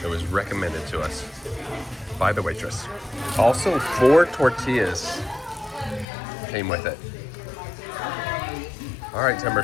It was recommended to us by the waitress. Also, 4 tortillas came with it. All right, Timber,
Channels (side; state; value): right; drops out; at 6.1 s